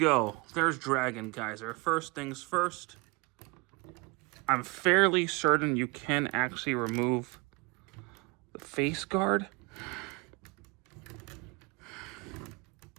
There's Dragon Kaiser. First things first, I'm fairly certain you can actually remove the face guard.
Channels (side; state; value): left; quieter; 27.4 dB